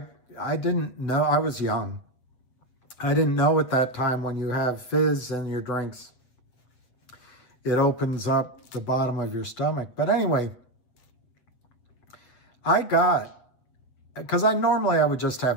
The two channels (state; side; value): late; right; 8.0 ms